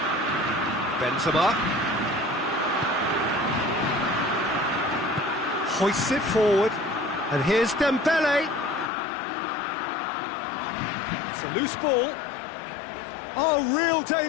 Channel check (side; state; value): right; drops out; at 8.9 s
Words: Benzema. Hoists it forward. And here's Dembele. It's a loose ball. Oh, real